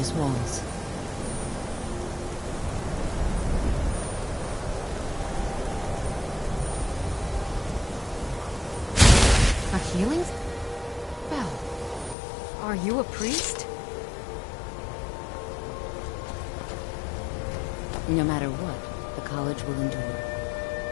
walls. A healing spell? Are you a priest? No matter what, the college will endure.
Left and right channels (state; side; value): drops out; right; at 12.2 s